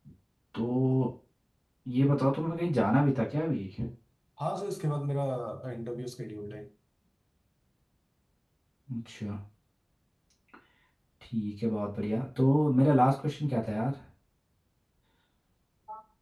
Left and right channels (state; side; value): identical; both; correlation 1.00